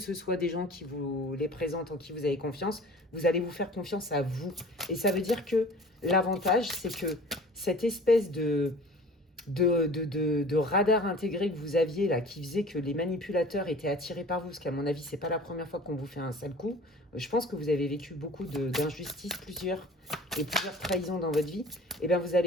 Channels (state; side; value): normal; both; correlation 0.44